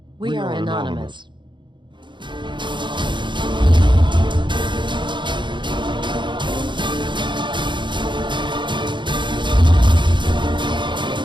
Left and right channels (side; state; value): left; late; 0.23 ms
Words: We are anonymous.